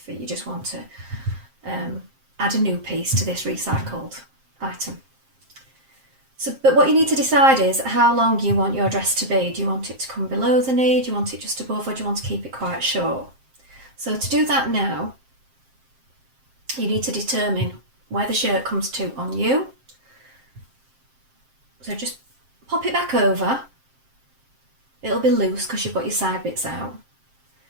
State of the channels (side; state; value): left; late; 7.6 ms